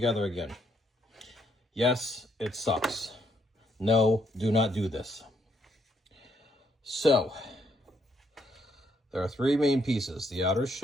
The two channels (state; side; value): normal; both; correlation 0.73